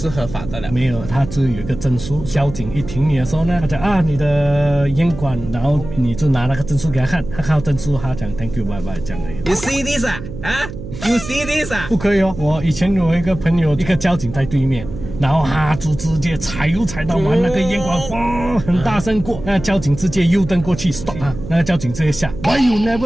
合法的了。没有，它就有一个证书，交警一停你的时候呢，他讲啊你的烟管，然后你就拿那个证书给他看，他看到证书，他讲 Thank you bye bye 这样而已。You see this 啊？You see this 啊？不可以哦！我以前有一个朋友，一个交警在对面，然后就直接踩到完那个烟管，哇，很大声过，那交警直接右灯过去 stop 他，那个交警直接下 ，Why you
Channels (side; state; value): right; noise; hum, 11 dB below the sound